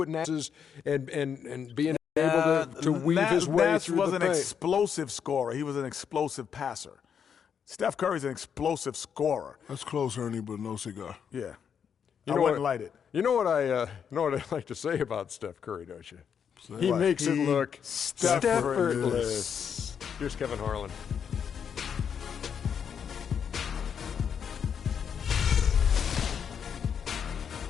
Nash is and being able to weave his way Nash through was the an paint. explosive scorer. He was an explosive passer. Steph Curry's an explosive scorer. That's close, Ernie, but no cigar. Yeah. I wouldn't light it. You know what I like to say about Steph Curry, don't you? He makes it look effortless. Here's Kevin Harlan.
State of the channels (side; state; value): right; quieter; 7.5 dB